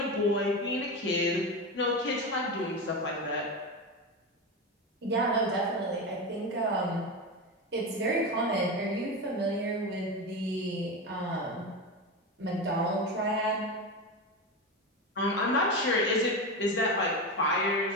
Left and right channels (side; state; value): both; normal; correlation 0.19